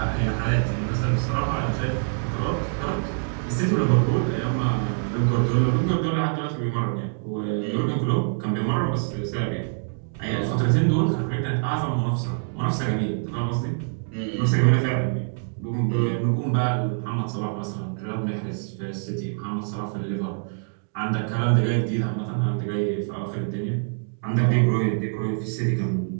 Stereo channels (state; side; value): silent; left; digital silence